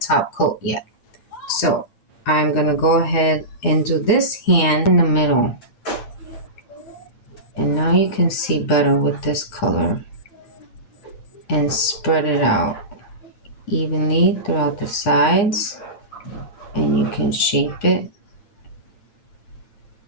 coat yet. So I'm gonna go ahead and do this hand in the middle. And now you can see better with this color. And spread it out evenly throughout the sides. And you can shape it.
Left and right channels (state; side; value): late; right; 8.8 ms